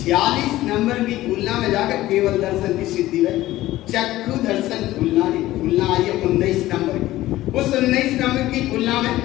नंबर की भूलना में जाकर केवल दर्शन की सिद्धि है। चक्षु दर्शन भूलना आई है 19 नंबर की। उस 19 नंबर की भूलना में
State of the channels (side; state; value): right; quieter; 15.9 dB